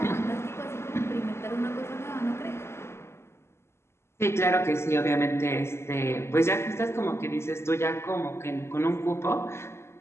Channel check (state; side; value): late; right; 0.13 ms